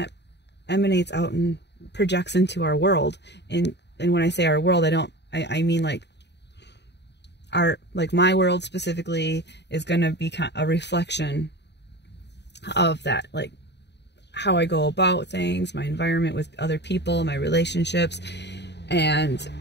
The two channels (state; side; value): late; right; 0.50 ms